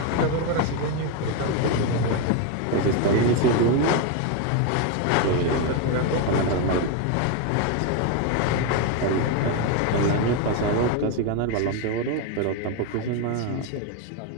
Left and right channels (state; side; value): different; both; correlation 0.02